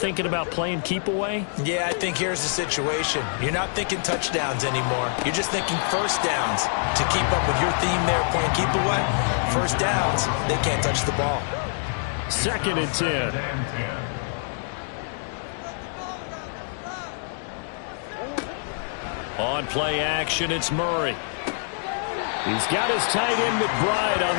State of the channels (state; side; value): silent; right; digital silence